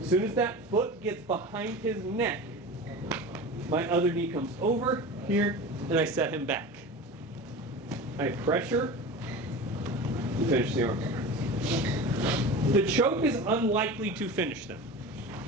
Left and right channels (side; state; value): both; normal; correlation 0.32